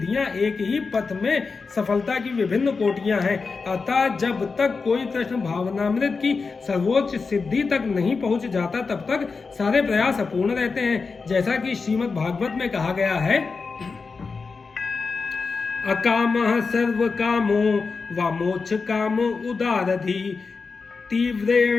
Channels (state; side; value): quieter; right; 4.6 dB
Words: एक ही पथ में सफलता की विभिन्न कोटियां हैं। अतः जब तक कोई कृष्ण भावनामृत की सर्वोच्च सिद्धि तक नहीं पहुंच जाता, तब तक सारे प्रयास अपूर्ण रहते हैं। जैसा कि श्रीमद् भागवत में कहा गया है, अकामः सर्व कामो व मोक्ष काम उदारधि